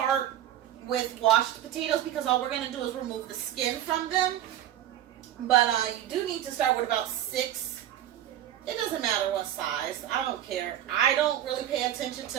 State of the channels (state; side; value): quieter; left; 11.8 dB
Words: with washed potatoes because all we're going to do is remove the skin from them. But you do need to start with about 6. It doesn't matter what size. I don't care. I don't really pay attention